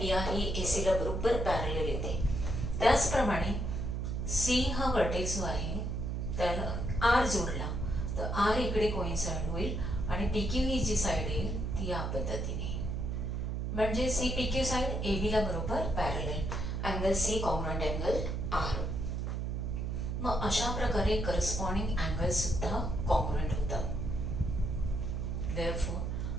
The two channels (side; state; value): right; noise; hum, 2 dB below the sound